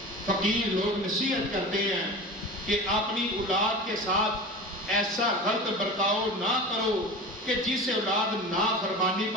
فقیر لوگ نصیحت کرتے ہیں کہ اپنی اولاد کے ساتھ ایسا غلط برتاؤ نہ کرو کہ جس سے اولاد نافرمانی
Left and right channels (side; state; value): both; normal; correlation 0.32